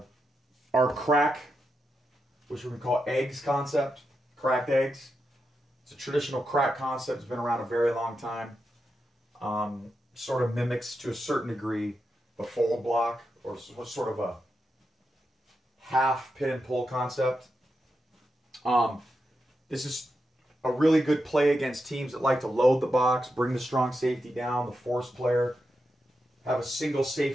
crack, which we call eggs concept, cracked eggs. It's a traditional crack concept. It's been around a very long time. Sort of mimics to a certain degree the fold block, or sort of a half pin and pull concept. This is a really good play against teams that like to load the box, bring the strong safety down, the force player, have a single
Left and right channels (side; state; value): both; normal; correlation 0.87